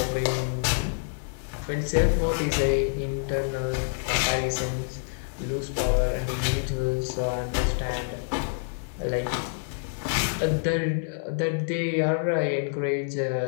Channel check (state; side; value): silent; right; 60 dB below the other